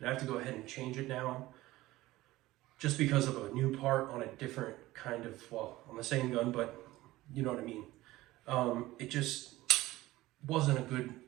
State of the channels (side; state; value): left; quieter; 17.6 dB